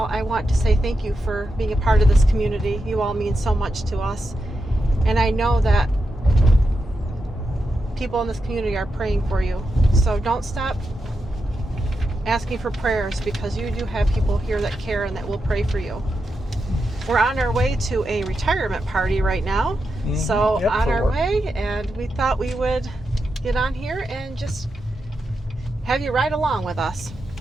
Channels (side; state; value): both; normal; correlation 0.87